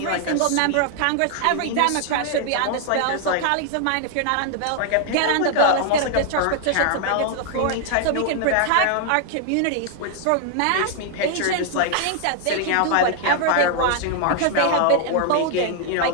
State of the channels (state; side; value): different; both; correlation 0.00